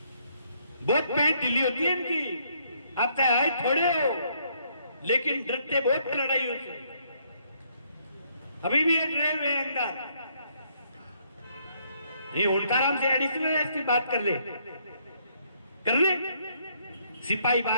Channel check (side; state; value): both; inverted; correlation -0.70